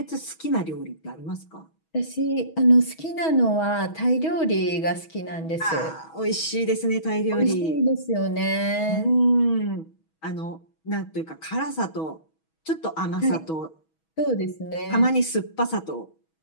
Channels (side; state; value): right; late; 6.2 ms